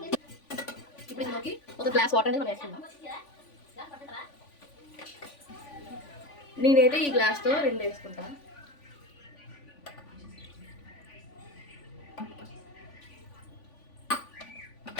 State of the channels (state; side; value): late; right; 3.5 ms